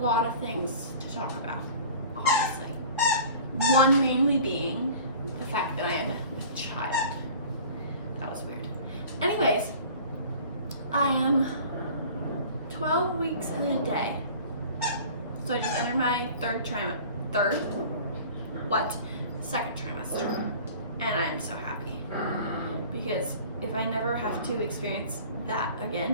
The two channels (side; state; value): both; inverted; correlation -0.43